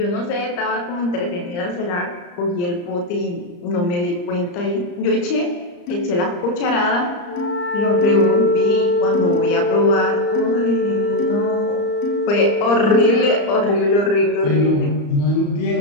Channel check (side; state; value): right; late; 34 ms